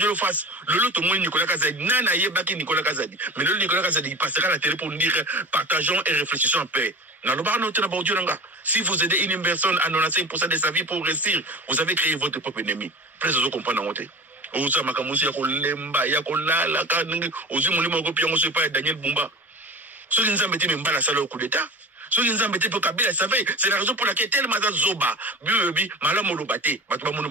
le face le lot au moins Nicolas Kazadi nana yebaki Nicolas Kazadi mais le Nicolas Kazadi il passera à la télé pour nous dire partageons et réfléchissons en paix. Si vous aidez une personne à 95% de sa vie pour réussir, vous avez créé votre propre ennemi. Presque vous comprenez en côté. Vous savez que Daniel Bumba. Ceux qui nous ont mis la salle au coup d'État. Ceux qui nous ont mis pour Kabila, c'est la raison pour laquelle tellement Zoba, Bibi, Malam Olobate, Batouba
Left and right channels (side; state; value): both; normal; correlation 0.34